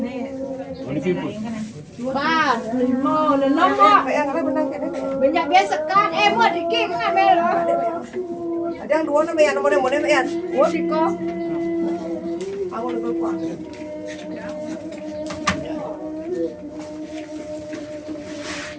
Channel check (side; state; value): both; identical; correlation 1.00